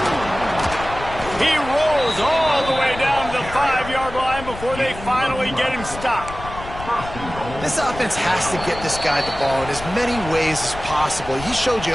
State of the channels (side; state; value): left; noise; rumble, 12 dB below the sound